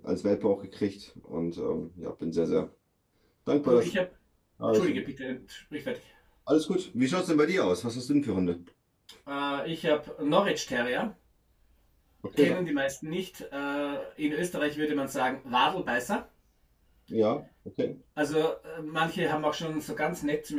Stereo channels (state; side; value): identical; both; correlation 1.00